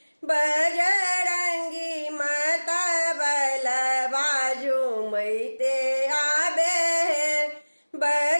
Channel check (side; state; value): both; inverted; correlation -1.00